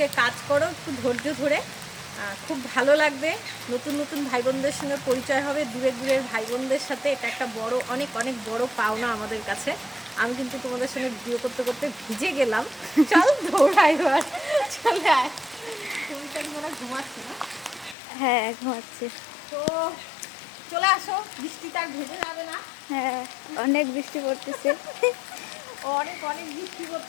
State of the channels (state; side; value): drops out; right; at 17.9 s